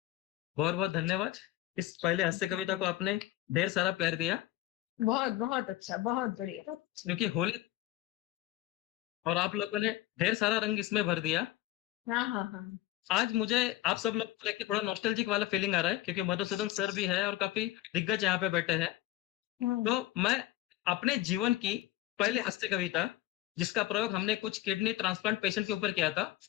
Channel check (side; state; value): right; quieter; 14.9 dB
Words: बहुत बहुत धन्यवाद। इस पहले हास्य कविता को आपने ढेर सारा प्यार दिया, बहुत बहुत अच्छा, बहुत बढ़िया। क्योंकि होली और आप लोगों ने ढेर सारा रंग इसमें भर दिया। हाँ। आज मुझे आप सब लोग को लेके थोड़ा नॉस्टैल्जिक वाला फीलिंग आ रहा है, क्योंकि मधुसूदन सर भी है और काफी दिग्गज यहाँ पे बैठे हैं। तो मैं अपने जीवन की पहली हास्य कविता, जिसका प्रयोग हमने कुछ किडनी ट्रांसप्लांट पेशेंट के ऊपर किया था